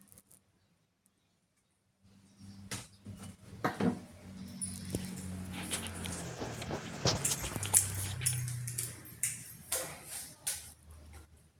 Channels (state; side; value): identical; both; correlation 1.00